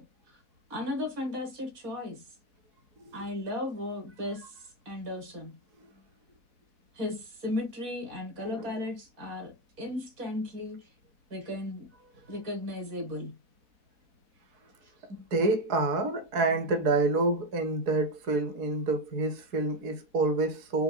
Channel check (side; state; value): left; late; 4.1 ms